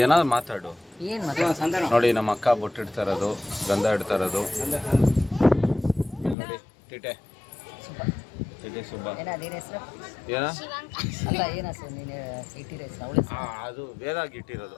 ಏನಾದ್ರು ಮಾತಾಡು. ಏನು ಮಾತಾಡ. ನೋಡಿ ನಮ್ಮ ಅಕ್ಕ ಬೊಟ್ಟಿಡ್ತಾ ಇರೋದು, ಗಂಧ ಇಡ್ತಾ ಇರೋದು. ನೋಡಿ ಟಿಟೆ ಸುಬ್ಬ. ಏನ ಅದೇನು ಹೆಸರು? ಏನ ಅಲ್ಲ ಏನು ಹೆಸರು ನೀನು ಇಟ್ಟಿರೋ ಹೆಸರು? ಅವಳ ಅದು ವೇದಾಗಿ ಇಟ್ಟಿರೋದು.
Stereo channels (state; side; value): drops out; right; at 6.4 s